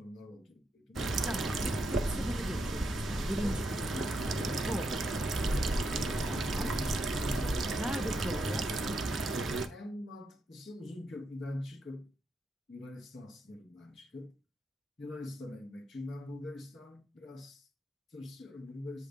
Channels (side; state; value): both; normal; correlation 0.81